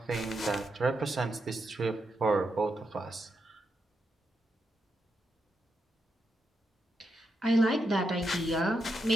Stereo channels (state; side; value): normal; both; correlation 0.84